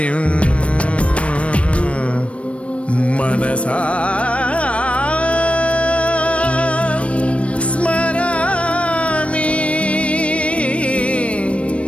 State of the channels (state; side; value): late; right; 0.062 ms